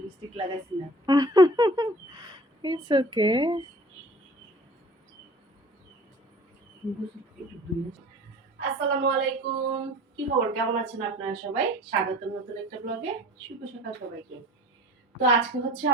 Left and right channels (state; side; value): normal; both; correlation 0.46